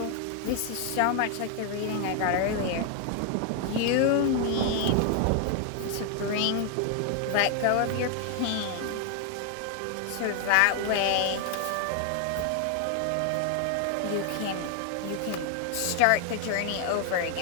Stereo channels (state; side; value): different; both; correlation 0.00